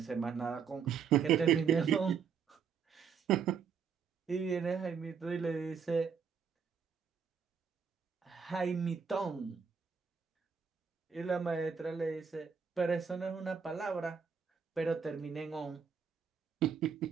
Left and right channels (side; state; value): left; quieter; 6.5 dB